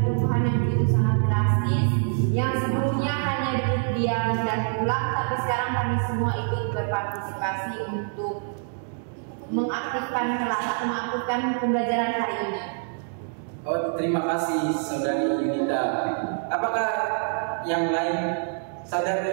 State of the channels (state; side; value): silent; left; 61 dB below the other